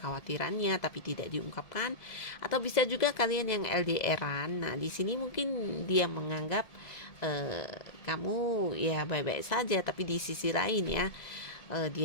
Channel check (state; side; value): late; right; 1.7 ms